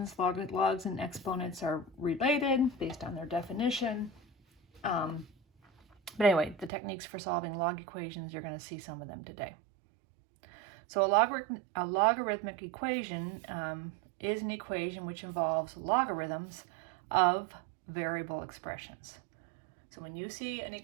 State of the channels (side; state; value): left; drops out; at 6.7 s